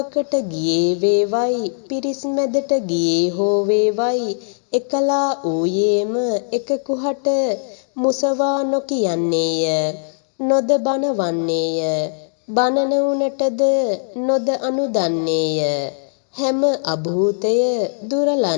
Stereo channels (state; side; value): silent; right; digital silence